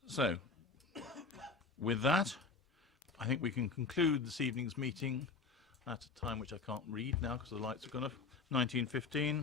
So, with that, I think we can conclude this evening's meeting at a time which I can't read now because the lights have gone off,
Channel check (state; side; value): quieter; right; 4.5 dB